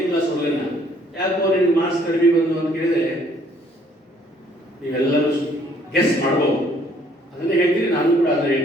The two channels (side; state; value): both; normal; correlation 0.62